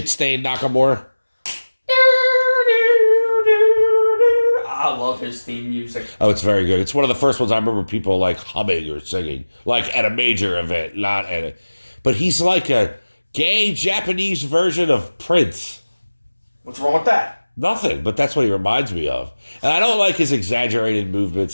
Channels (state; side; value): inverted; both; correlation -1.00